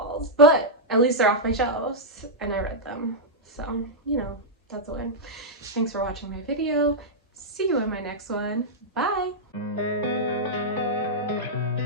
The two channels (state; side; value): normal; both; correlation -0.07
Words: but at least they're off my shelves and I read them. So, you know, that's a win. Thanks for watching my video. See you in my next one. Bye!